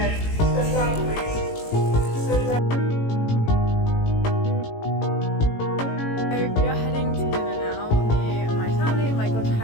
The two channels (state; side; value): late; right; 18 ms